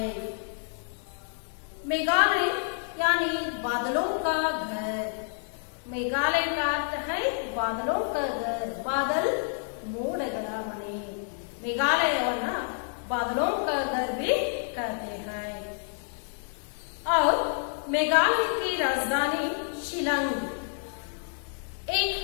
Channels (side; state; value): right; silent; digital silence